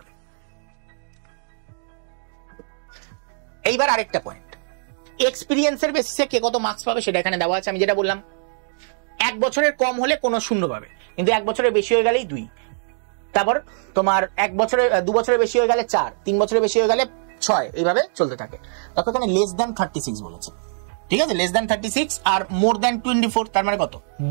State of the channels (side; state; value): left; silent; digital silence